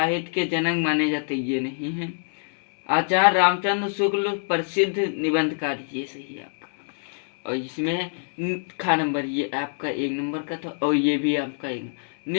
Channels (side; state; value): right; silent; 62 dB below the other